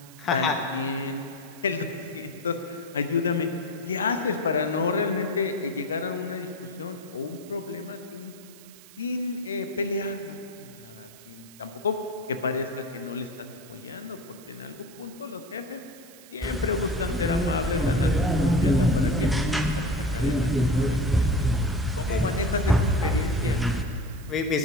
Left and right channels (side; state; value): right; noise; hiss, 21 dB below the sound